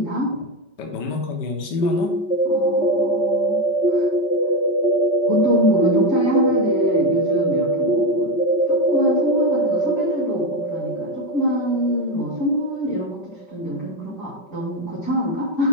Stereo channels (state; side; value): late; right; 5.3 ms